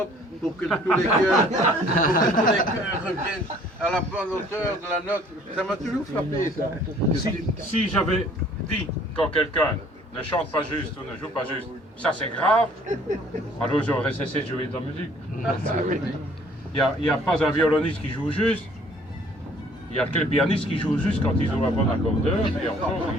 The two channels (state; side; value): normal; both; correlation 0.57